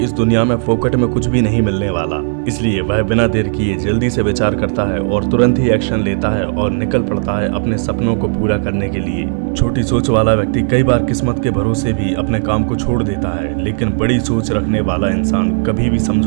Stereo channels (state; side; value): silent; left; digital silence